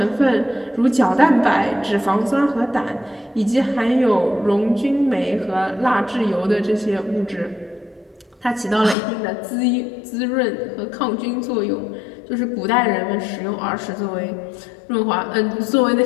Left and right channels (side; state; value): right; drops out; at 9.0 s